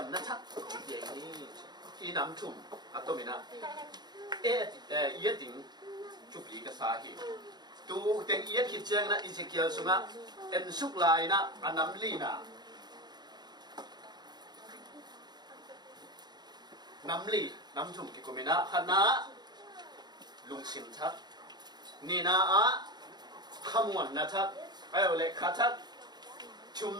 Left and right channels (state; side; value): late; left; 0.20 ms